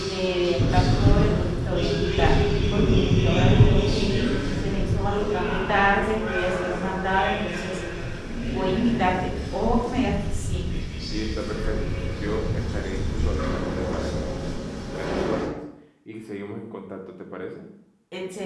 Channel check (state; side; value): identical; both; correlation 1.00